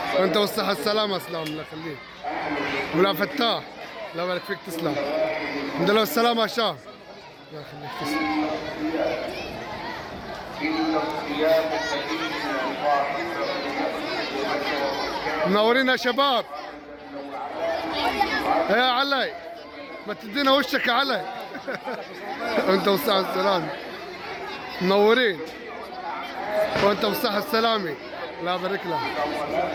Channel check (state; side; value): identical; both; correlation 1.00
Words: وانت بالصحة السلامة. اسلام الله يخليك. ولا فتاح. الله يبارك فيك تسلم. الحمد لله والسلامة يا شاه. الله يخليك تسلم. منورين يا شباب. يا علي ما تدينا وشك يا علي. وانت بالصحة السلامة. منورين. وانت بالصحة السلامة. الله يبارك لك.